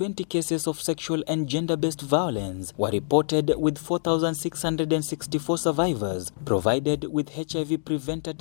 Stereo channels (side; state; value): right; silent; digital silence